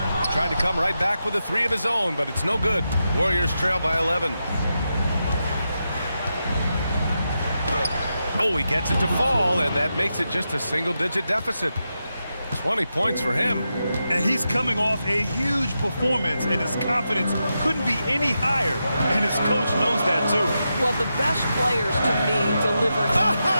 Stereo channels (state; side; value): inverted; both; correlation -0.87